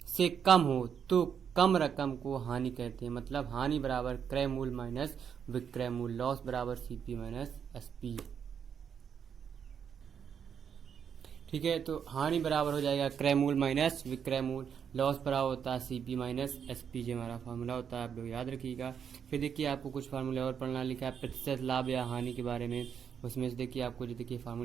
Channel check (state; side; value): quieter; left; 7.6 dB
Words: से कम हो तो कम रकम को हानि कहते हैं। मतलब हानि बराबर क्रय मूल्य माइनस विक्रय मूल्य, लॉस बराबर CP माइनस SP। ठीक है, तो हानि बराबर हो जाएगा क्रय मूल्य माइनस विक्रय मूल्य, लॉस बराबर होता है CP माइनस SP। जो हमारा फार्मूला होता है आप लोग याद रखिएगा। फिर देखिए आपको कुछ फार्मूले और पढ़ना लिखा है प्रतिशत लाभ या हानि के बारे में। उसमें से देखिए आपको जो देखिए